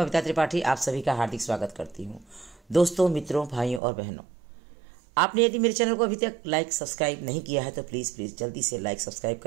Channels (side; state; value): left; drops out; at 3.8 s